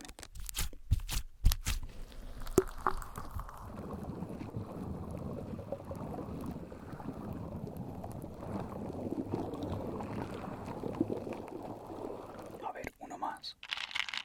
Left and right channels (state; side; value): identical; both; correlation 1.00